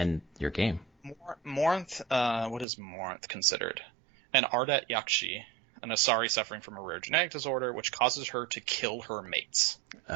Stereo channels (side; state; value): left; drops out; at 2.7 s